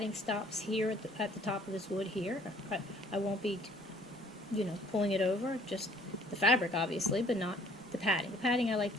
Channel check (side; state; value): both; normal; correlation 0.58